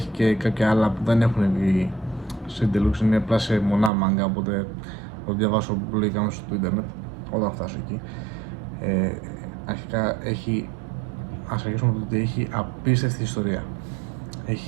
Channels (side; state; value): left; drops out; at 3.9 s